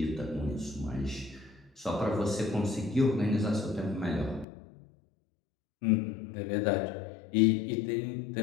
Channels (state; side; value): drops out; right; at 4.5 s